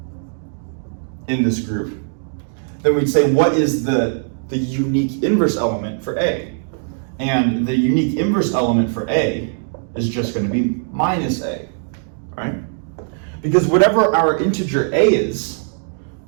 in this group, then we'd say what is the unique inverse element for A? And the unique inverse element for A is just going to be minus A, right? Because whatever our integer A is,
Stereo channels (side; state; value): left; silent; digital silence